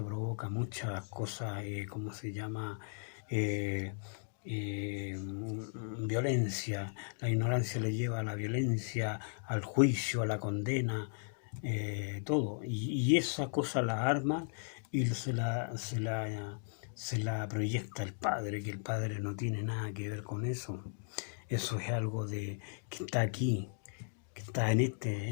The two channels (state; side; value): silent; right; digital silence